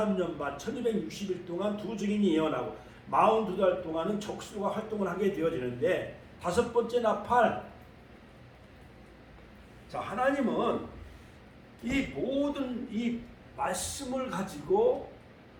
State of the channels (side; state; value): both; identical; correlation 1.00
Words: 반 1260일 동안 두 증인이 예언하고 42달 동안은 적수가 활동을 하게 되어지는데 다섯 번째 나팔. 자, 하나님은 이 모든 이 말씀을 가지고